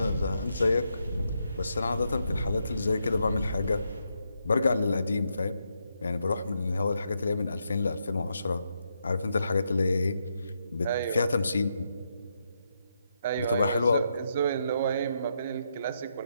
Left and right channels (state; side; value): inverted; both; correlation -0.81